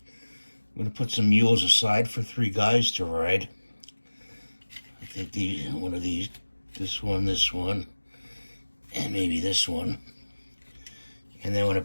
I'm going to put some mules aside for 3 guys to ride. I think one of these, this one, and maybe this one. And then I'm going to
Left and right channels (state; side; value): inverted; both; correlation -1.00